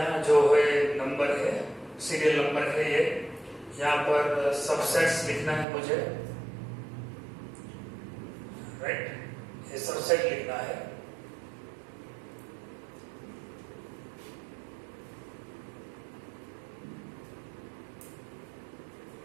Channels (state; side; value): drops out; left; at 5.7 s